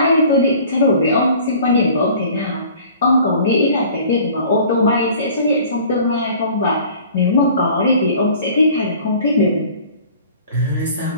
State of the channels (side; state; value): both; inverted; correlation -0.48